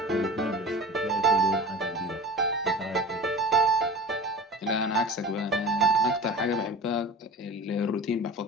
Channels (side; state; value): both; normal; correlation 0.36